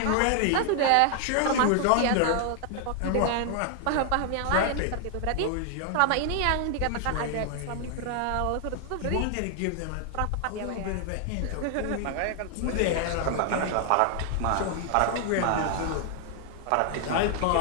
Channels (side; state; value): both; different; correlation 0.00